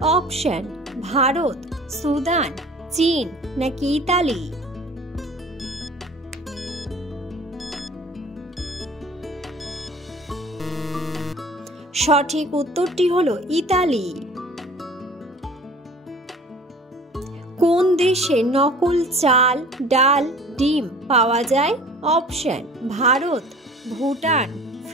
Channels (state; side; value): normal; both; correlation 0.46